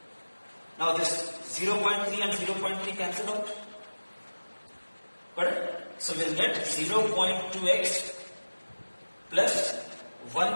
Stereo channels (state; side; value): inverted; both; correlation -1.00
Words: Now this 0.3 and 0.3 cancel out. Correct? So we'll get 0.2x plus